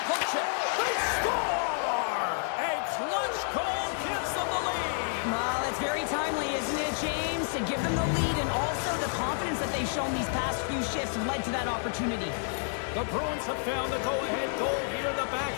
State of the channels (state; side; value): silent; right; 56 dB below the other